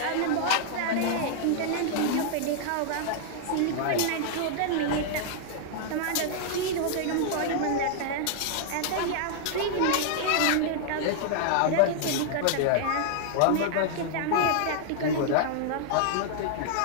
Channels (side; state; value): both; different; correlation -0.01